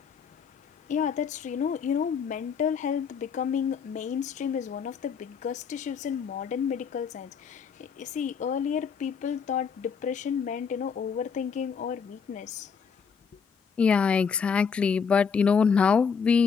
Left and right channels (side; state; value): right; quieter; 6.3 dB